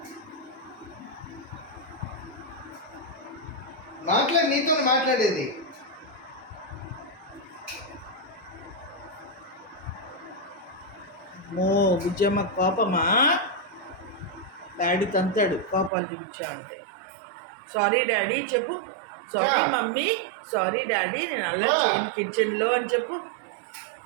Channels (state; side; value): drops out; left; at 15.9 s